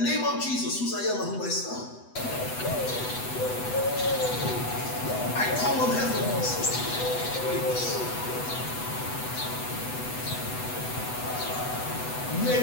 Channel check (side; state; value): right; late; 8.0 ms